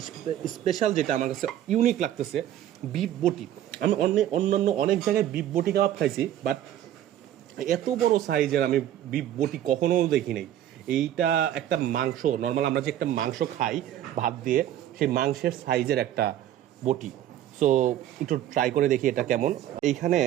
স্পেশাল যেটা আমার কাছে ইউনিক লাগতেছে, বিফ বটি। আমি অন্যান্য অনেক জায়গায় বিফ বটি কাবাব খাইছি, বাট এত বড় সাইজের আমি বিফ বটি কখনো দেখি নাই। এইটা একটা মাংস, নর্মাল আমরা যে একটা মাংস খাই ভাত দিয়ে, সেই মাংসের সাইজের একটা বটি। সো একটু ট্রাই করে দেখি এটা কেমন। এইখানে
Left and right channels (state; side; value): quieter; left; 11.9 dB